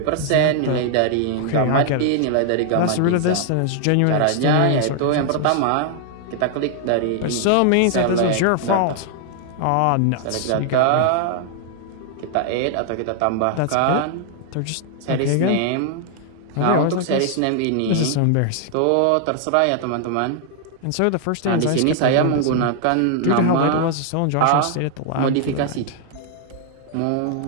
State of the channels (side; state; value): both; different; correlation 0.00